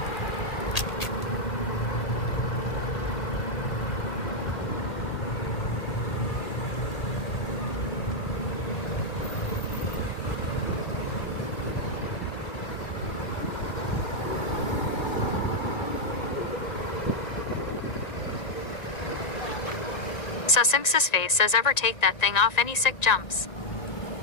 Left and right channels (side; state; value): right; late; 1.9 ms